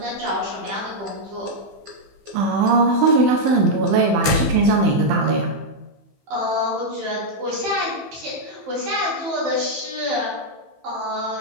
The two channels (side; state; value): left; late; 15 ms